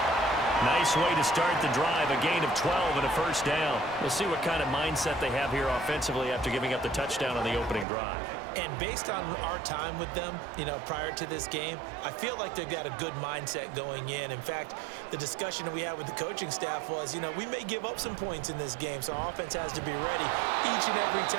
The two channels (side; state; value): left; drops out; at 7.9 s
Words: Nice way to start the drive, a gain of 12 and a first down. We'll see what kind of mindset they have here offensively after giving up the touchdown on the opening drive. And based on our time with them, prior to this game, I feel like they've got a good mindset going in. In fact, the discussion that we had with the coaching staff was, we may give up some points in this game, so our offense has to be ready each and every